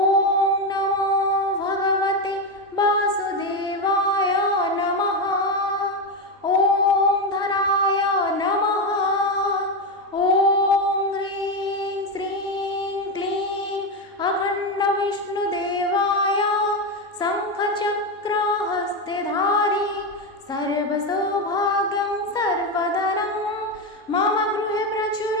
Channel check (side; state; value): both; normal; correlation 0.11